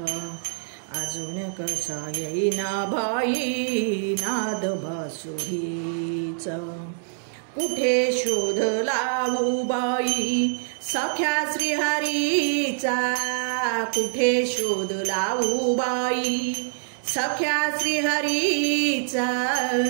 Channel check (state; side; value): silent; left; digital silence